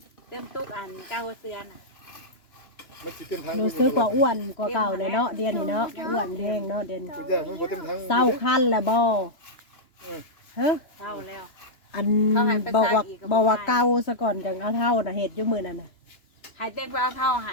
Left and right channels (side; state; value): right; late; 2.9 ms